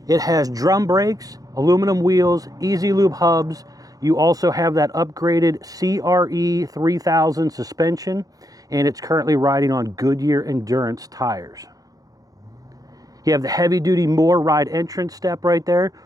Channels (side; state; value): left; late; 0.17 ms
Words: It has drum brakes, aluminum wheels, easy lube hubs. You also have that upgraded CRE 3000 suspension, and it's currently riding on Goodyear Endurance tires. You have the heavy-duty Moore ride entrance step right there,